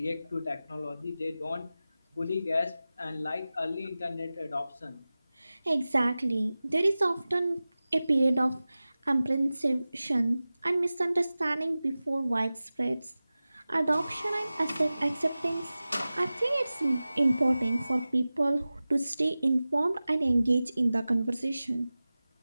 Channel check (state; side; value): inverted; both; correlation -0.96